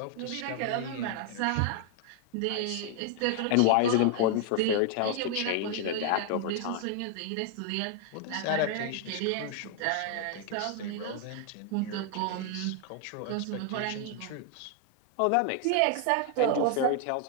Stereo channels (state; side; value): different; both; correlation 0.00